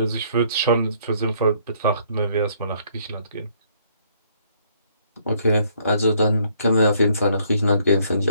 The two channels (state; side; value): inverted; both; correlation -0.65